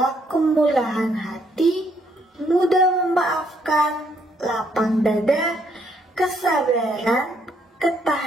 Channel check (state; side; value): normal; both; correlation 0.71